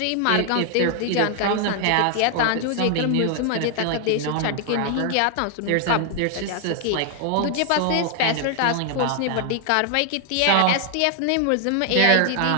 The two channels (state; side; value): different; both; correlation 0.00